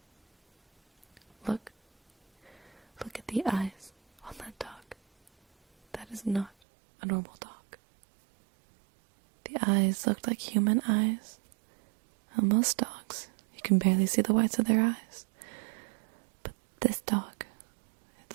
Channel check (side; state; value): left; drops out; at 6.5 s